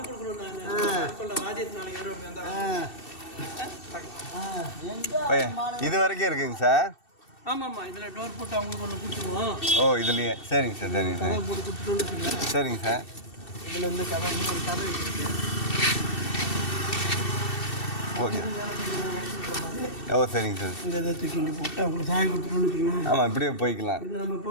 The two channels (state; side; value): late; right; 2.7 ms